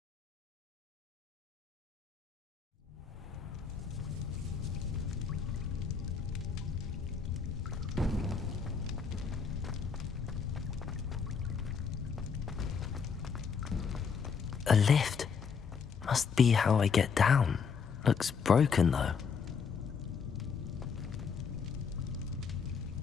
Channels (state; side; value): quieter; right; 6.0 dB